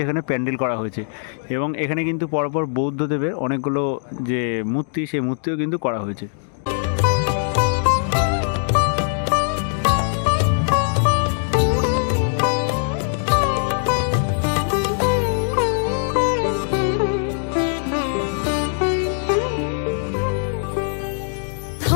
এখানে প্যান্ডেল করা হয়েছে, এবং এখানে কিন্তু পরপর বৌদ্ধদেবের অনেকগুলো যে মূর্তি, সেই মূর্তিও কিন্তু করা হয়েছে।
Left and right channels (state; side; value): silent; right; 65 dB below the other